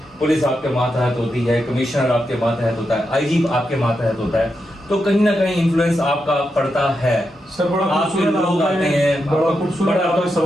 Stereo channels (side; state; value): both; normal; correlation 0.86